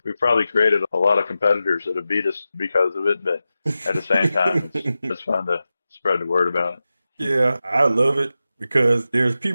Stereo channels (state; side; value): inverted; both; correlation -0.93